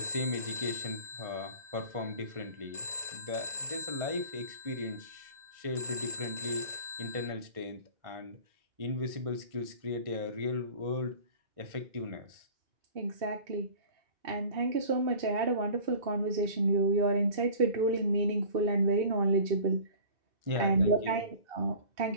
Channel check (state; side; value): late; left; 2.6 ms